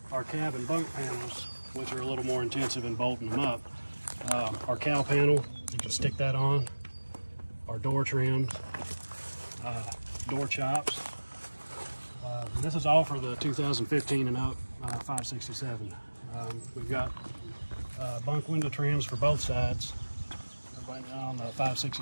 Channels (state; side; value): inverted; both; correlation -1.00